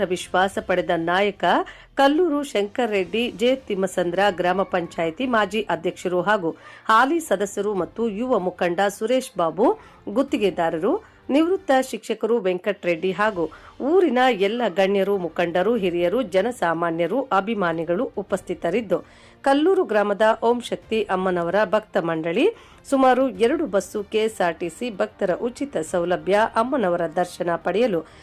ವಿಶ್ವಾಸ ಪಡೆದ ನಾಯಕ ಕಲ್ಲೂರು ಶಂಕರ್ ರೆಡ್ಡಿ ಜೆ ತಿಮ್ಮಸಂದ್ರ ಗ್ರಾಮ ಪಂಚಾಯಿತಿ ಮಾಜಿ ಅಧ್ಯಕ್ಷರು ಹಾಗೂ ಹಾಲಿ ಸದಸ್ಯರು ಮತ್ತು ಯುವ ಮುಖಂಡ ಸುರೇಶ್ ಬಾಬು ಗುತ್ತಿಗೆದಾರರು ನಿವೃತ್ತ ಶಿಕ್ಷಕರು ವೆಂಕಟರೆಡ್ಡಿ ಹಾಗೂ ಊರಿನ ಎಲ್ಲ ಗಣ್ಯರು ಮುಖಂಡರು ಹಿರಿಯರು ಜನಸಾಮಾನ್ಯರು ಅಭಿಮಾನಿಗಳು ಉಪಸ್ಥಿತರಿದ್ದು ಕಲ್ಲೂರು ಗ್ರಾಮದ ಓಂ ಶಕ್ತಿ ಅಮ್ಮನವರ ಭಕ್ತ ಮಂಡಳಿ ಸುಮಾರು 2 ಬಸ್ಸು ಕೆಎಸ್ಆರ್ಟಿಸಿ ಭಕ್ತರ ಉಚಿತ ಸೌಲಭ್ಯ ಅಮ್ಮನವರ ದರ್ಶನ ಪಡೆಯಲು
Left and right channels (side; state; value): both; identical; correlation 1.00